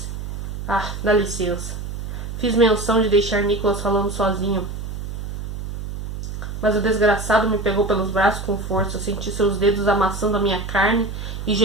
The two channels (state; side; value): noise; right; hum, 7 dB below the sound